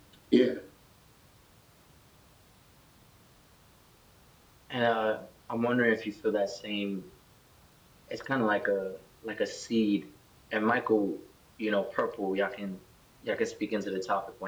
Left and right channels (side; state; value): both; identical; correlation 1.00